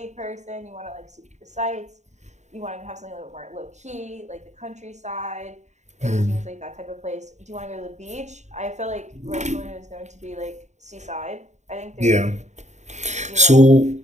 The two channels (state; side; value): late; left; 0.34 ms